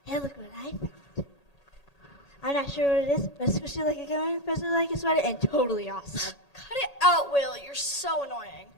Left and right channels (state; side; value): late; right; 1.8 ms